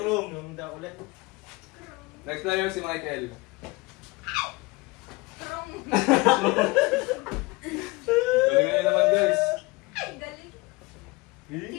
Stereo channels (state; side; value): quieter; right; 23.7 dB